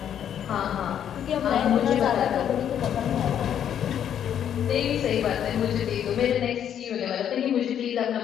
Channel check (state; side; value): quieter; right; 9.5 dB